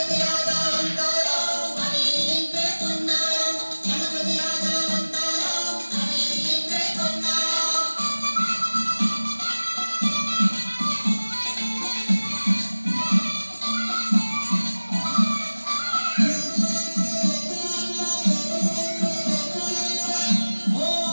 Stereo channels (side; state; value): both; inverted; correlation -1.00